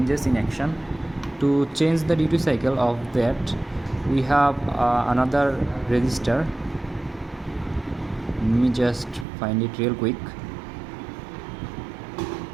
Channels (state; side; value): drops out; left; at 9.2 s